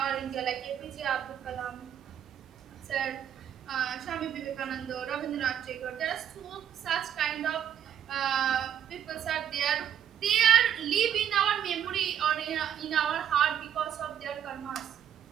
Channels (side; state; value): left; quieter; 9.5 dB